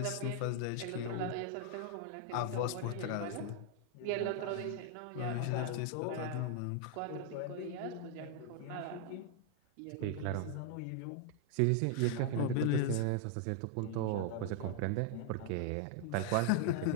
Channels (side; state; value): both; different; correlation 0.00